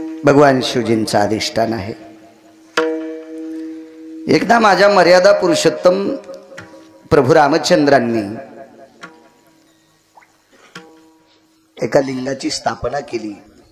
भगवान शिवजींचा अधिष्ठान आहे. एकदा माझ्या मर्यादा पुरुषोत्तम प्रभू रामचंद्रांनी एका लिंगाची स्थापना केली.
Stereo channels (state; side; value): identical; both; correlation 1.00